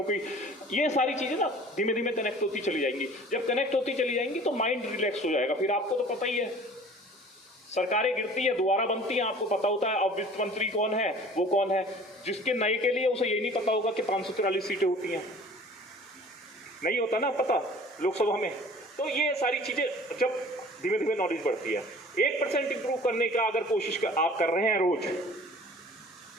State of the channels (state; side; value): normal; both; correlation 0.47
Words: की। ये सारी चीजें ना धीमे धीमे कनेक्ट होती चली जाएंगी। जब कनेक्ट होती चली जाएंगी तो माइंड रिलैक्स हो जाएगा। फिर आपको तो पता ही है, सरकारें गिरती है, दोबारा बनती हैं, आपको पता होता है अब वित्त मंत्री कौन है, वो कौन है। जिसके नए के लिए उसे ये नहीं पता होगा कि 544 सीटें होती हैं, नहीं होता ना पता लोकसभा में। तो ये सारी चीजें जब धीमे धीमे नॉलेज बढ़ती है, 1% इंप्रूव करने का अगर कोशिश आप कर रहे हैं रोज,